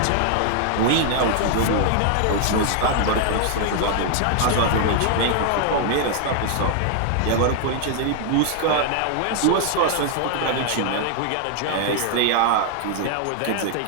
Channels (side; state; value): both; different; correlation 0.00